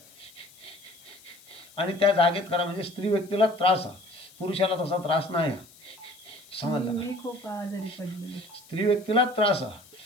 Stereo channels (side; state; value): left; noise; hiss, 24 dB below the sound